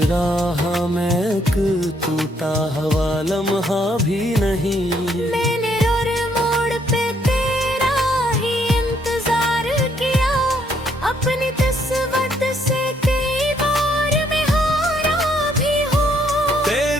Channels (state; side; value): normal; both; correlation 0.70